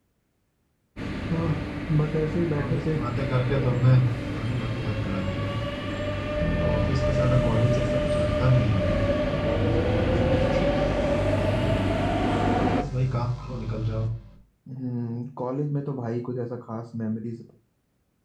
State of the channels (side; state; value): both; identical; correlation 1.00